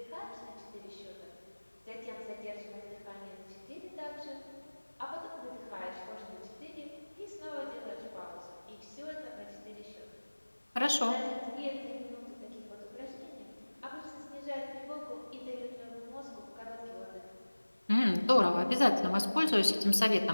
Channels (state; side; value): inverted; both; correlation -1.00